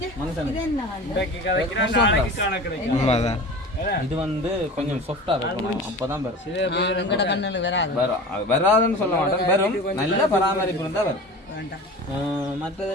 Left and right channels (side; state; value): both; normal; correlation 0.36